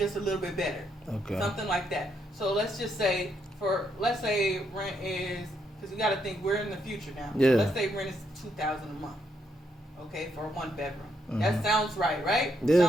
a little bit better. Okay. Something like that. So let's just say let's say rent is, because you got to think we're in the future now. Yeah. So let's say rent is $2,000 a month. Okay, for a 1-bedroom. That sounds right? Yeah.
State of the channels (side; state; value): both; normal; correlation 0.76